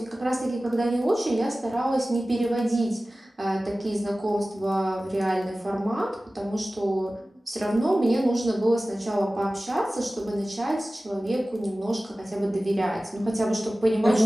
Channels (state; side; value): normal; both; correlation 0.97